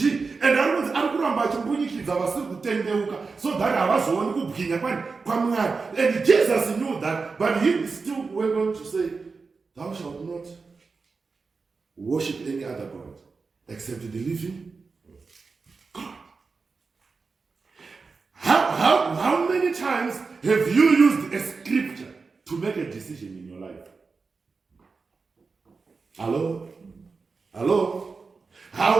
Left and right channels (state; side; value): quieter; left; 4.5 dB